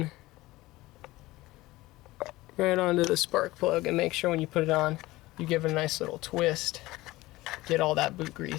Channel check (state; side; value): quieter; right; 19.0 dB